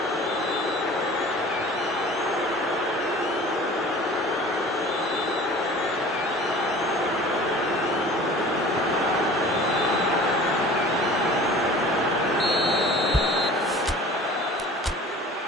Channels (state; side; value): normal; both; correlation 0.44